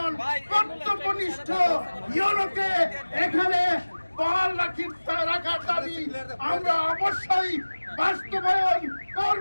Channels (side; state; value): both; inverted; correlation -1.00